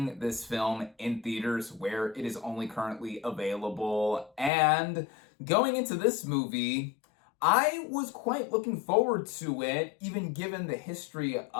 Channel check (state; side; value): drops out; right; at 4.5 s